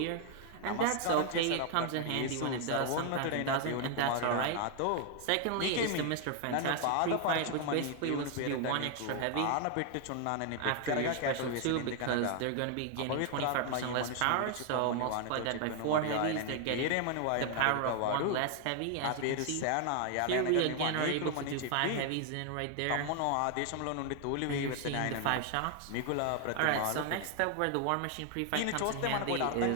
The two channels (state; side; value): different; both; correlation 0.00